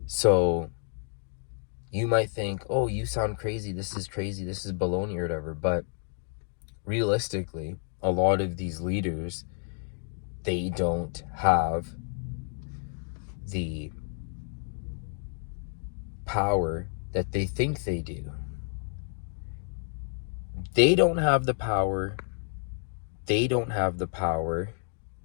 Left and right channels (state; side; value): silent; right; 58 dB below the other